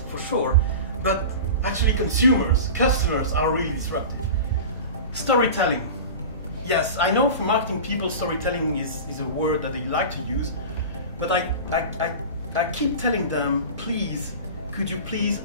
for sure, but actually consumers, customers are really disruptive. Storytelling. Yes, I know for marketing people storytelling is a word that they like to use, but I keep telling them, please, could you please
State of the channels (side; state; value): both; inverted; correlation -0.32